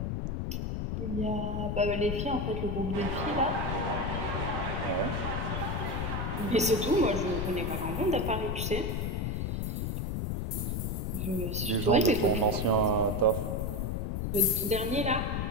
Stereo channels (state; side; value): noise; left; rumble, 1 dB below the sound